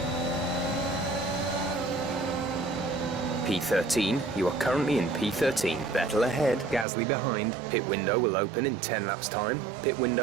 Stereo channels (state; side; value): drops out; left; at 6.9 s